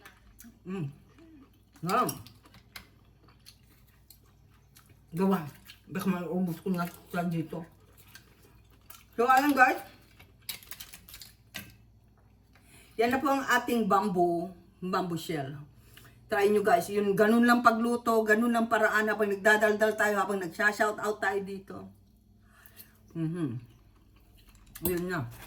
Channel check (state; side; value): identical; both; correlation 1.00